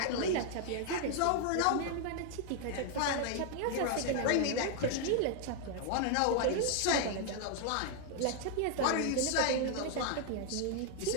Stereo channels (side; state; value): both; different; correlation 0.00